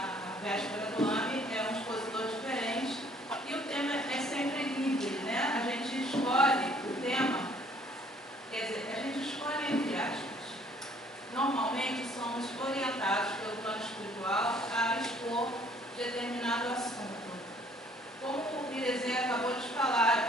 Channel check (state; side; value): normal; both; correlation 0.60